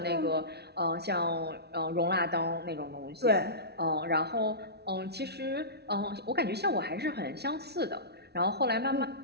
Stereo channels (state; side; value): late; left; 0.48 ms